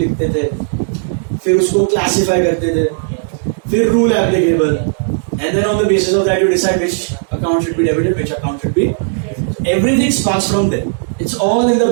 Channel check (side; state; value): left; silent; digital silence